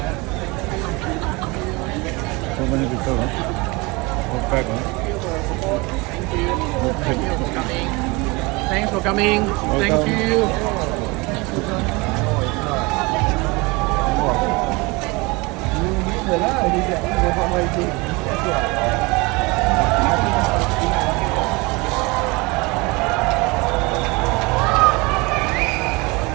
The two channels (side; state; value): left; quieter; 25.7 dB